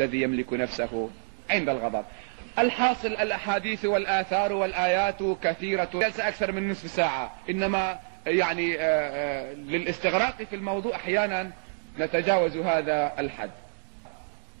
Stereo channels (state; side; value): silent; left; digital silence